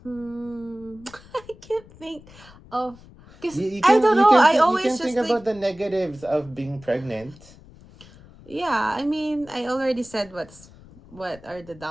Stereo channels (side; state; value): left; noise; rumble, 22 dB below the sound